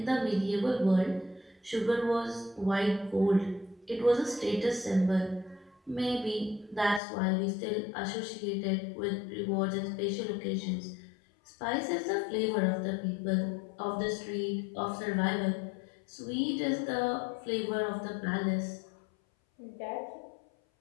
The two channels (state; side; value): drops out; right; at 7.0 s